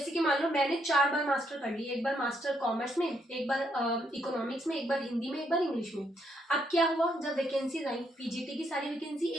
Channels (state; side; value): normal; both; correlation 0.74